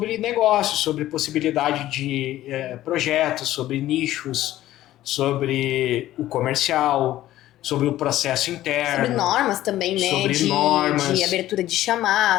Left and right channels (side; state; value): right; quieter; 14.3 dB